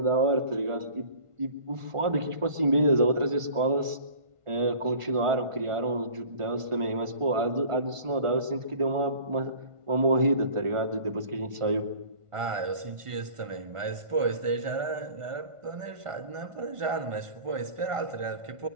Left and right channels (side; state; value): left; late; 1.5 ms